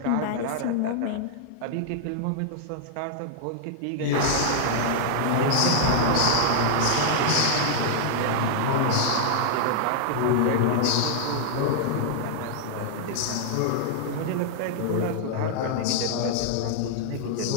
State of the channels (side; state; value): both; different; correlation -0.01